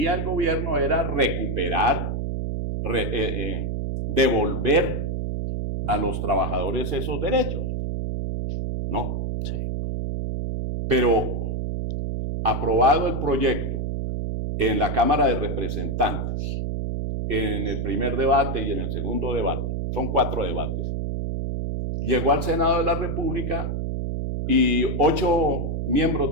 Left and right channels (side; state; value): right; noise; hum, 2 dB below the sound